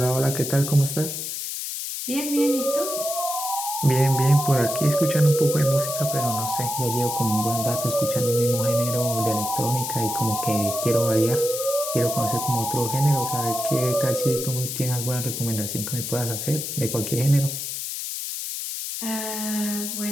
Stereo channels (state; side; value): noise; left; hiss, 5 dB below the sound